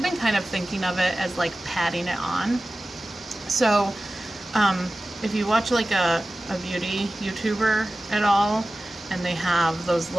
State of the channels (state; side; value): normal; both; correlation 0.96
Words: been kind of thinking of it as like patting it on. So if you watch like a beauty YouTuber at all, and they have those